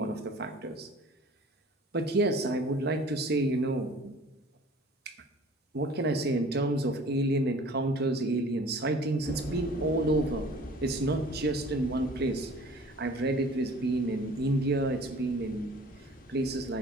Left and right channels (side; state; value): both; normal; correlation 0.48